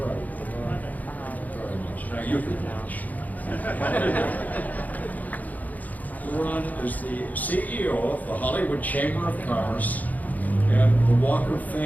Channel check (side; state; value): right; late; 0.079 ms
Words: LeRon, thank you very much. Now you can watch. LeRon is the CEO of the Hollywood Chamber of Commerce and the Walk of